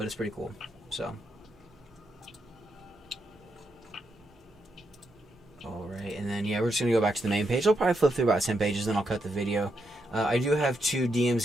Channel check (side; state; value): both; normal; correlation 0.82